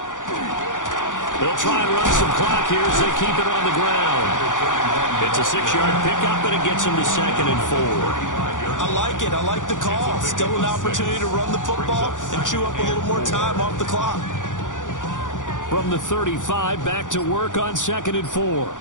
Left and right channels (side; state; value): right; late; 0.87 ms